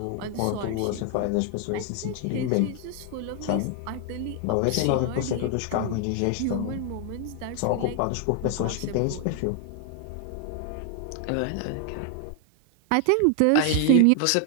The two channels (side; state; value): both; different; correlation 0.00